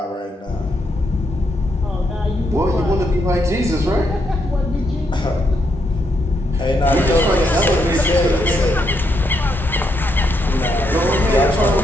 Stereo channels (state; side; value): normal; both; correlation 0.78